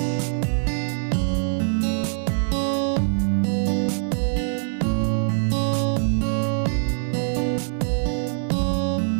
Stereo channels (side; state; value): left; silent; 63 dB below the other